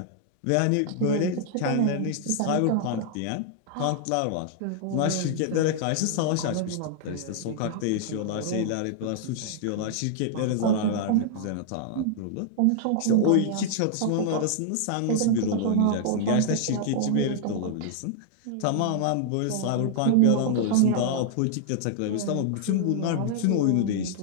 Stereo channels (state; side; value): different; both; correlation -0.01